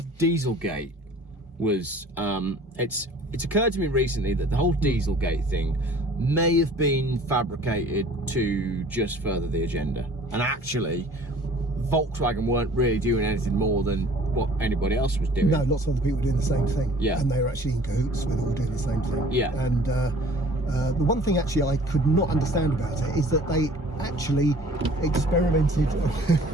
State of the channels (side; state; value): both; normal; correlation 0.50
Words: Dieselgate was it's occurred to me recently that the whole Dieselgate thing may have been fabricated to just further the agenda, and actually Volkswagen weren't really doing anything more than what anybody else was doing. No, lots of other people were doing the same thing. Yeah. And they were actually in cahoots with all doing the same thing. Yeah. And the one thing actually I could not understand about it is that they actually experimented.